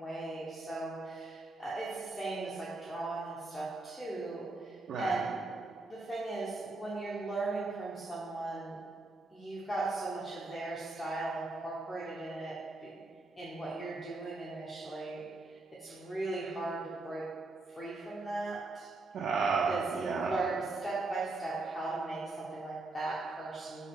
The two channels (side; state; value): left; quieter; 3.1 dB